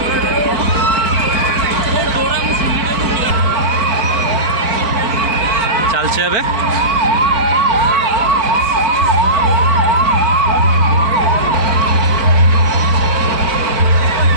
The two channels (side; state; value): left; late; 4.5 ms